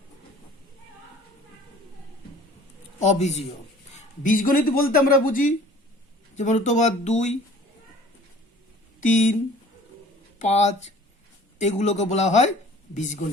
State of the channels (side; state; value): both; normal; correlation 0.50